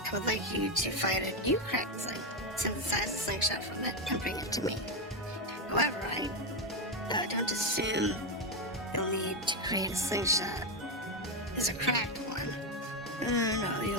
I would like you to find a new cracked sling, synthesize a slingshot from it, and bring it to me. However, I don't assume you'll need to create a slingshot as a cracked one.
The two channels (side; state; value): both; normal; correlation 0.09